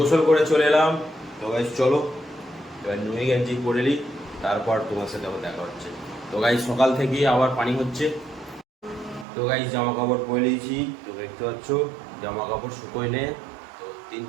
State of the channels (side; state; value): left; drops out; at 9.2 s